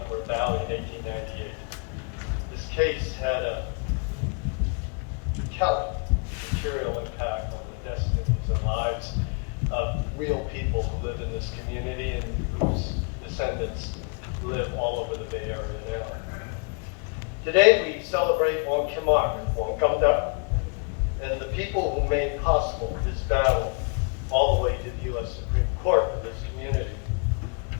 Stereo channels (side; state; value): right; quieter; 38.2 dB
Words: Valley, in 1898. This case had a telling material impact on the destinies and lives of real people who live in this community and whose descendants live all over the Bay Area now. Today we celebrate Wong Kim Ark, Wong Kim Ark, and the people who made possible this battle all the way to the U.S. Supreme Court for this community.